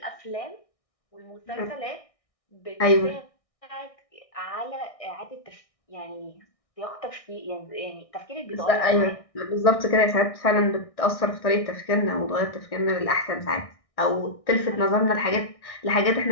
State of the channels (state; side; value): late; right; 1.6 ms